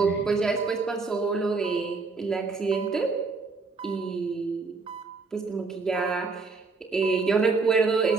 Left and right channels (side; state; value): left; quieter; 4.2 dB